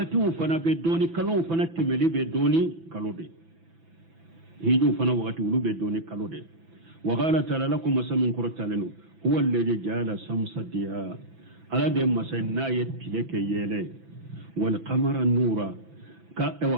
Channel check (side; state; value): left; late; 6.0 ms